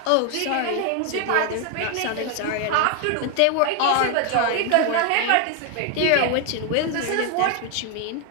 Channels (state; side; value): different; both; correlation 0.00